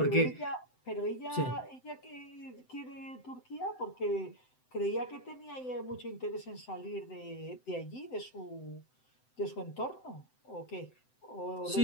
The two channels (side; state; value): right; late; 7.8 ms